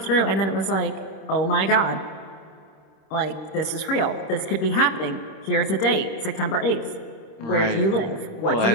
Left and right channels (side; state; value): right; late; 26 ms